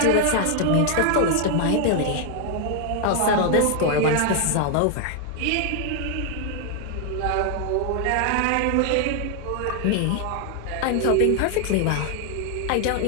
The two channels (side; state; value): both; different; correlation 0.00